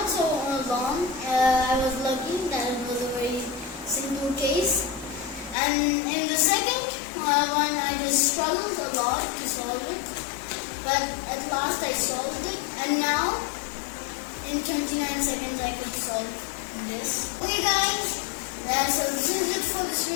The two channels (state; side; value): drops out; right; at 5.6 s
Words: so long. I was lucky that it was a very simple case. And in the second one, I just struggled a lot to solve it. But at last I solved it. And now, in 29 seconds, I could solve this. Okay guys, so this is it for this